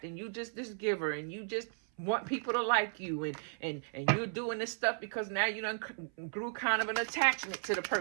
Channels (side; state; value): left; silent; 54 dB below the other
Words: and you just this giver, and you just want people to like you, and you're doing this stuff because now you done grew kind of an attachment to the